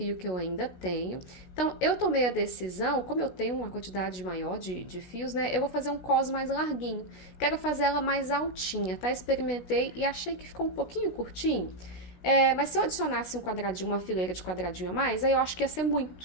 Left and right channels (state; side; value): late; right; 16 ms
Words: que eu ainda tenho. Então, eu tomei a decisão, como eu tenho uma quantidade maior de fios, né? Eu vou fazer um cos mais larguinho. Quero fazer ela mais altinha, tá? Experimentei e achei que ficou um pouquinho curtinho. Mas se eu adicionasse um quadradinho, uma fileira de quadradinho a mais, aí eu acho que ia ser